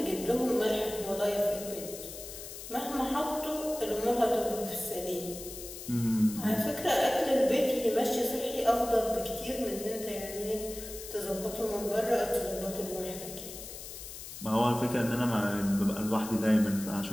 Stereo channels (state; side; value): noise; left; hiss, 11 dB below the sound